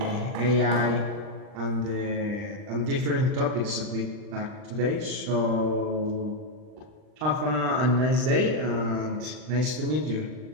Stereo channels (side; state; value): left; late; 39 ms